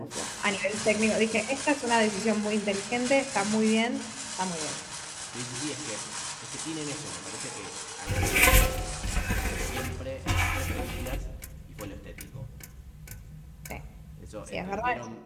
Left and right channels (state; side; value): identical; both; correlation 1.00